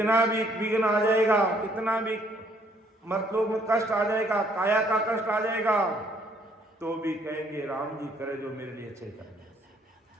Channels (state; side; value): normal; both; correlation 0.65